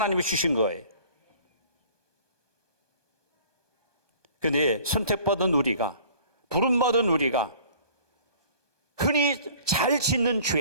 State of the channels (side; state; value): left; late; 1.2 ms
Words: 주신 거예요. 그런데 선택받은 우리가, 부름받은 우리가 흔히 잘 짓는